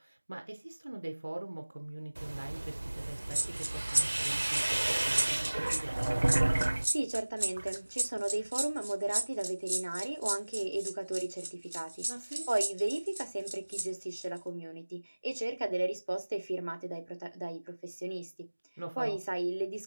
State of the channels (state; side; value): inverted; both; correlation -1.00